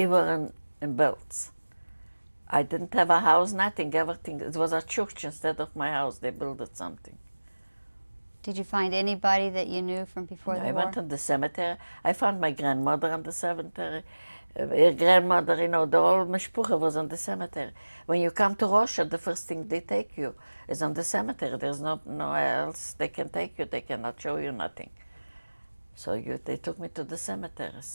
were in Bălţi. I didn't have a house, nothing, everything. It was a church instead of my house. They built something. Did you find anybody that you knew from before the war? I went in the cemetery. I found my grandmother in the cemetery. Her grandmother, you know, the whole mishpucha was in the cemetery. When you come to Russia, the first thing they take you is on the cemetery. There's no else they can take you. They cannot show you nothing. So they took me to the cemetery.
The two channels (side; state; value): both; inverted; correlation -1.00